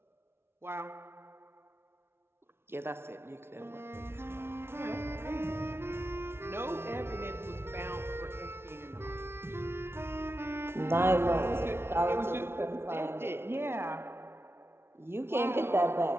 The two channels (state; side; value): late; left; 0.12 ms